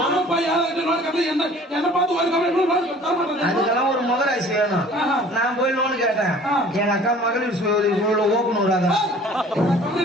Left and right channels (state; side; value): normal; both; correlation 0.49